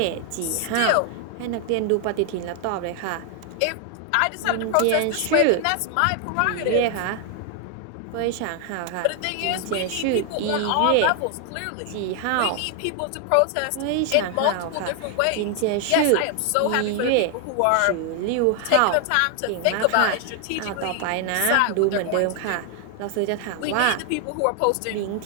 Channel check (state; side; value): different; both; correlation 0.00